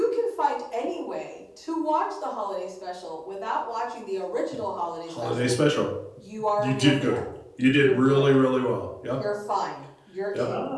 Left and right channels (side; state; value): both; identical; correlation 1.00